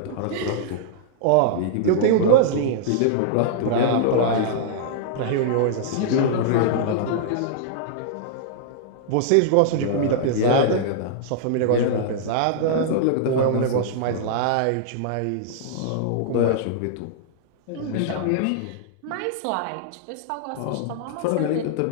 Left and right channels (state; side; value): different; both; correlation -0.01